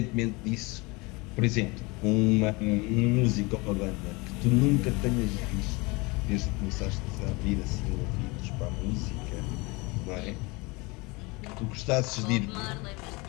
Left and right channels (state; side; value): quieter; right; 25.7 dB